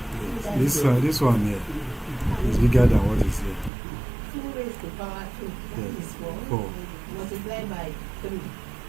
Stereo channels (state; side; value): drops out; left; at 3.7 s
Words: This one here is bigger than what is here. 2 raised to power 2. That Yes. is 4. 4. Multiplied by 3.